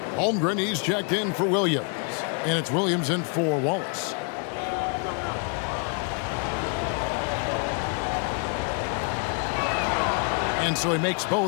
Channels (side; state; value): right; quieter; 38.4 dB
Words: Holmgren, he's checked in for Williams. And it's Williams in for Wallace. And so he makes